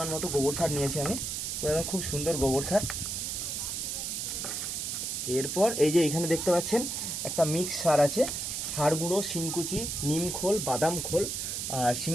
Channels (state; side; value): noise; right; hiss, 3 dB below the sound